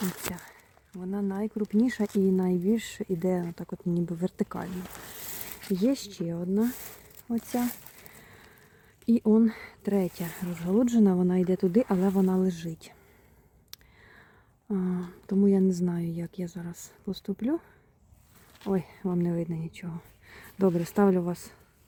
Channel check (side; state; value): both; identical; correlation 1.00